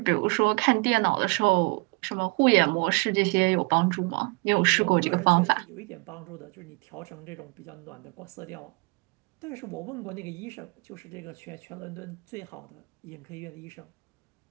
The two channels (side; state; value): left; quieter; 29.5 dB